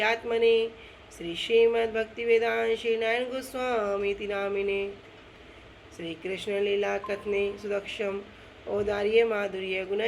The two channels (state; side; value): identical; both; correlation 1.00